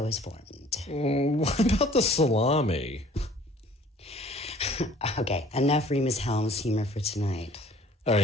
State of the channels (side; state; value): both; normal; correlation 0.53